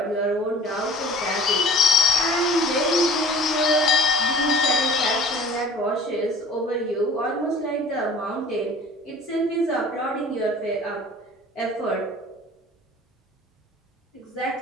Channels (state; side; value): normal; both; correlation 0.45